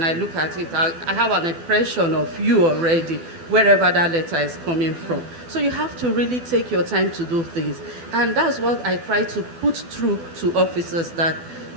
I look at it, I have an impression of you already, wherever that letter is coming from. So you have to really take your time to do things. And that's what I try to put through to officers, that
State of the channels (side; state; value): left; late; 12 ms